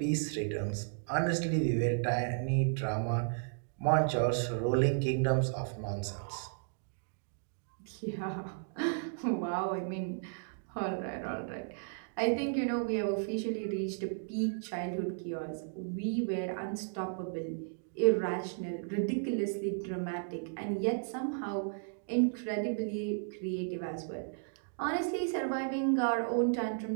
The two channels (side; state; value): left; silent; digital silence